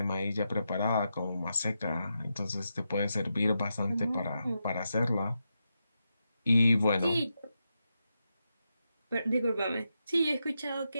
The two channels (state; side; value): inverted; both; correlation -0.87